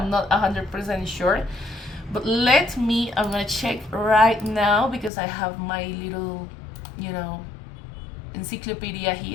not 100% sure, but I'm gonna check right now, because I have my little encyclopedia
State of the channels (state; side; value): drops out; right; at 5.1 s